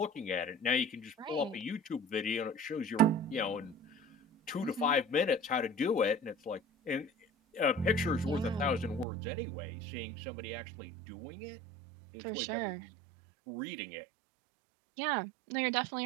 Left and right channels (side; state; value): left; drops out; at 9.1 s